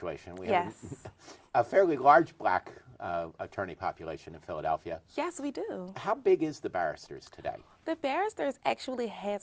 We have Yes. a fairly large black attorney population in Philadelphia. Yes, we do. How big is the barristers today? The Barristers actually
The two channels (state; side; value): identical; both; correlation 1.00